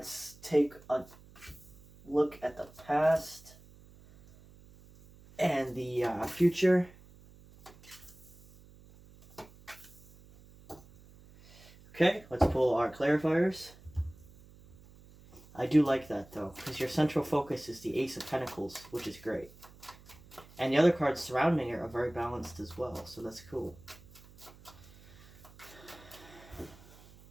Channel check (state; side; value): noise; right; hum, 23 dB below the sound